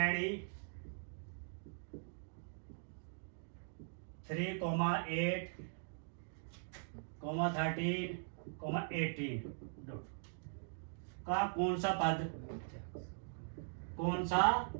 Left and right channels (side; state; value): left; silent; digital silence